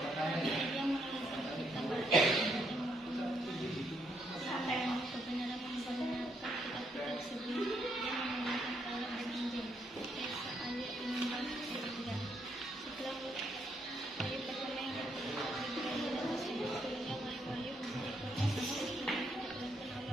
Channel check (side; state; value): both; normal; correlation 0.75